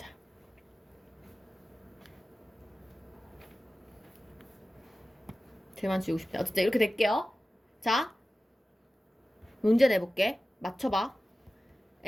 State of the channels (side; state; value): both; normal; correlation 0.95